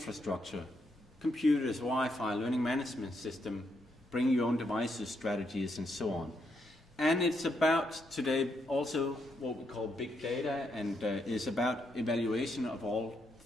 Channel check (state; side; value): normal; both; correlation 0.78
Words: Computers, Wi-Fi, learning management system, bring your own devices, strategies, and so on. And it's about today also what we call big data, and is about evaluation of all